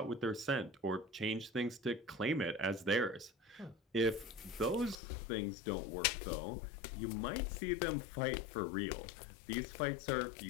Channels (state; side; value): drops out; right; at 5.0 s